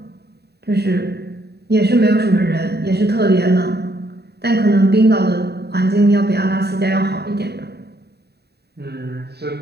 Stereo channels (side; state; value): left; late; 0.48 ms